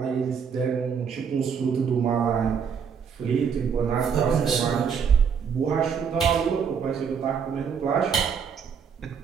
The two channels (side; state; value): left; quieter; 6.8 dB